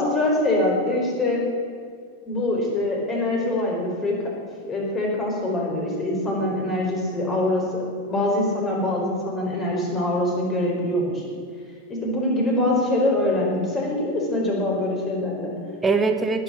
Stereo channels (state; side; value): normal; both; correlation 0.21